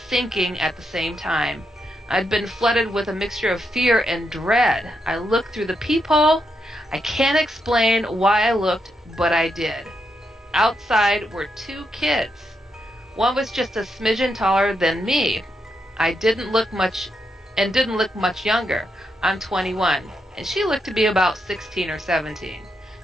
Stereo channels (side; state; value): both; normal; correlation 0.82